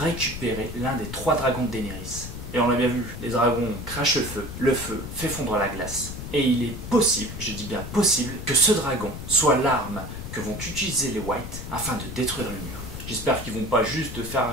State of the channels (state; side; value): noise; left; rumble, 9 dB below the sound